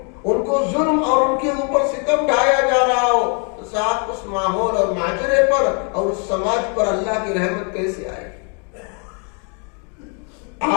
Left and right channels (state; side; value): quieter; right; 38.6 dB